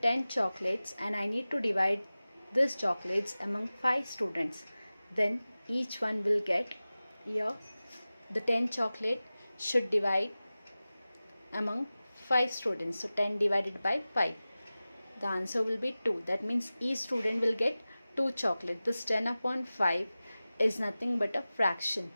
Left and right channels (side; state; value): both; inverted; correlation -0.97